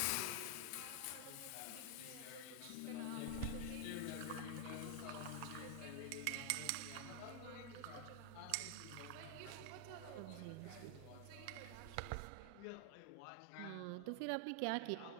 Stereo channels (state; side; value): different; both; correlation 0.00